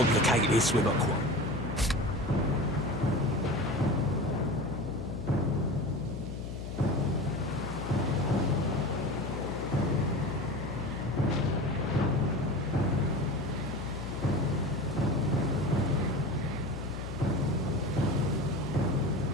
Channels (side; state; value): left; noise; hum, 7 dB below the sound